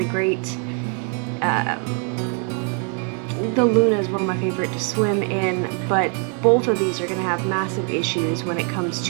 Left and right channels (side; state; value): left; quieter; 39.8 dB